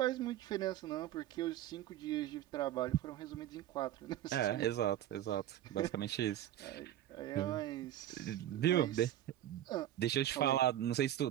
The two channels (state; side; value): quieter; left; 12.5 dB